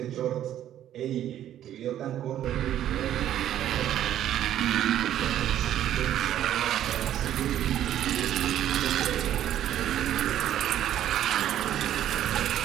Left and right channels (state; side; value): quieter; left; 11.5 dB